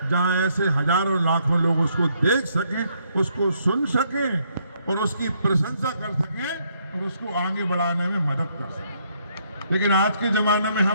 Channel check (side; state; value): both; inverted; correlation -0.71